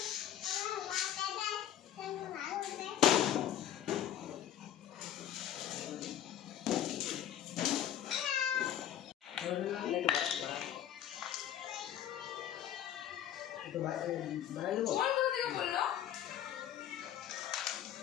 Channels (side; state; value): right; quieter; 11.0 dB